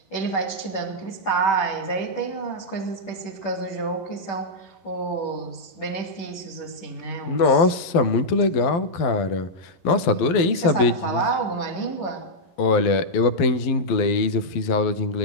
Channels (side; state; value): right; late; 12 ms